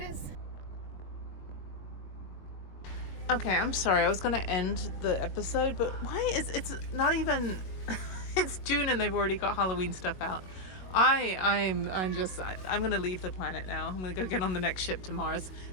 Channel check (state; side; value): late; right; 21 ms